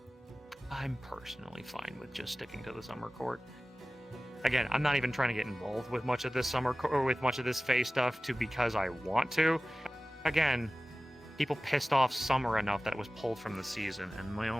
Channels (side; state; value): both; normal; correlation 0.96